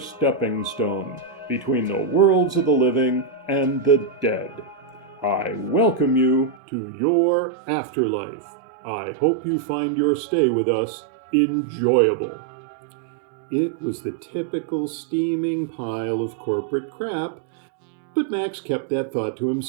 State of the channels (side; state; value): left; drops out; at 6.6 s